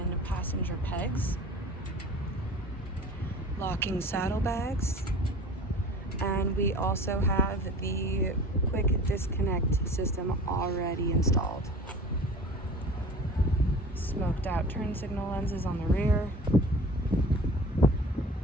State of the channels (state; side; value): normal; both; correlation 0.41